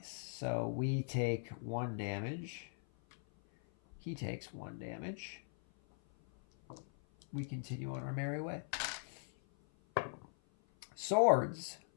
So we take 1 damage. He takes 1 damage. We continue on our merry way. Swords.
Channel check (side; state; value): right; silent; 51 dB below the other